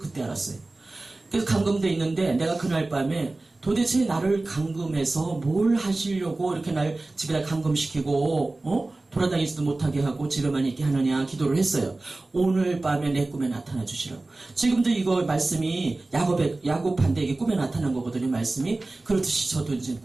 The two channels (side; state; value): left; quieter; 3.1 dB